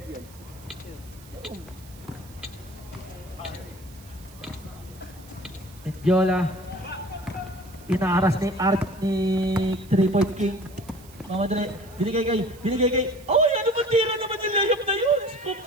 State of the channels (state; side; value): noise; right; hiss, 23 dB below the sound